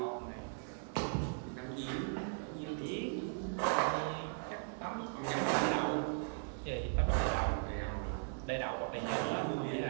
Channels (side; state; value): left; silent; digital silence